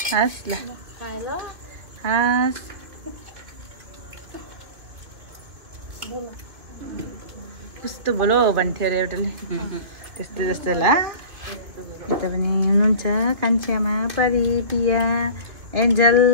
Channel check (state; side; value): late; left; 2.7 ms